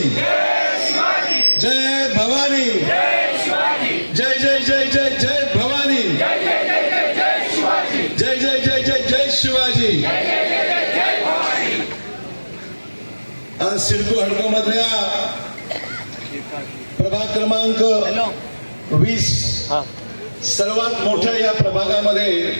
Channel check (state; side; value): inverted; both; correlation -1.00